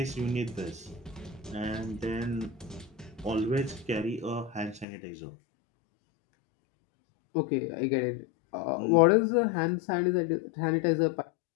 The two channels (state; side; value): drops out; right; at 4.9 s